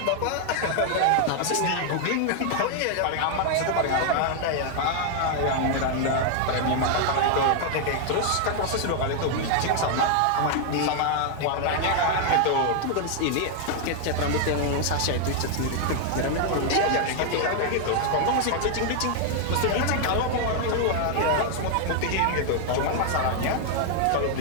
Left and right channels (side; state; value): both; different; correlation 0.00